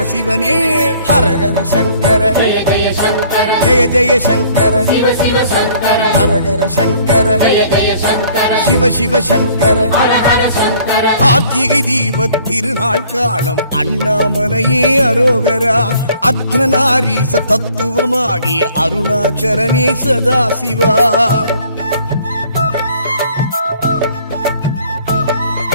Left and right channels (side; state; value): both; inverted; correlation -0.57